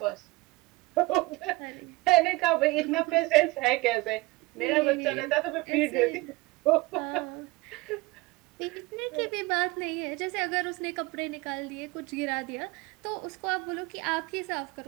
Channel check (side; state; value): left; quieter; 21.8 dB